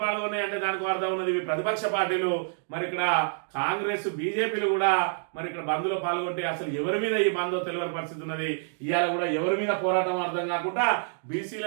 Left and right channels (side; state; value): left; silent; digital silence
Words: పాల్గొన్నాయి అంటే దానికి అర్థం ఉన్నది ఇవి ప్రతిపక్ష పార్టీలు. మరి ఇక్కడ కాంగ్రెస్, బీజేపీలు కూడా మరి ఇక్కడ బంద్లో పాల్గొంటే అసలు ఎవరి మీద ఈ బందో తెలియని పరిస్థితి ఉన్నది. ఇవాళ కూడా ఎవరి మీద పోరాటం అర్థం కాకుండా